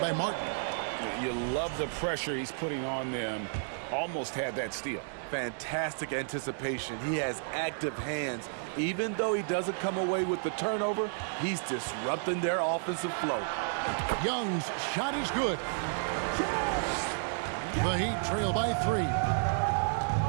Martin. You love the pressure he's putting on them. Almost had that steal. Fantastic anticipation. He has active hands. Even though he doesn't come away with the turnover, he's disrupting their offensive flow. Young's shot is good. The Heat trail by 3.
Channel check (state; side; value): silent; left; digital silence